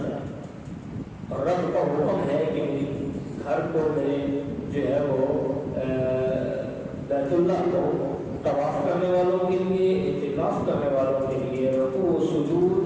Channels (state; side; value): identical; both; correlation 1.00